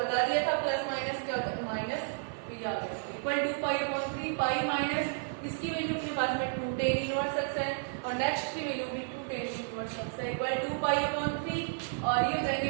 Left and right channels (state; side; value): silent; left; 56 dB below the other